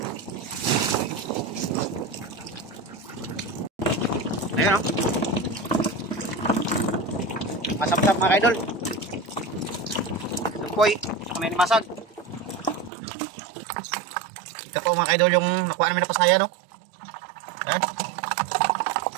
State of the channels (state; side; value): drops out; left; at 12.9 s